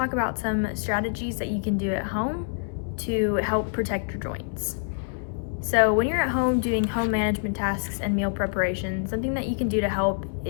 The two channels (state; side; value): silent; right; 61 dB below the other